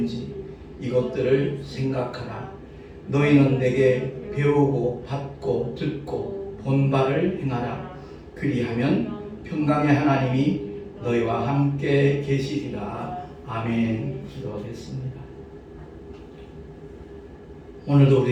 이것들을 생각하라. 너희는 내게 배우고 받고 듣고 본 바를 행하라. 그리하면 평강의 하나님이 너희와 함께 계시리라. 아멘. 기도하겠습니다. 오늘도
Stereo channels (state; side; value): identical; both; correlation 1.00